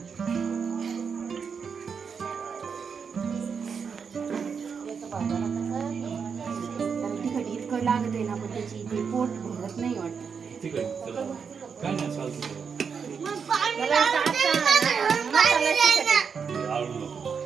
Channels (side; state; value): left; quieter; 6.2 dB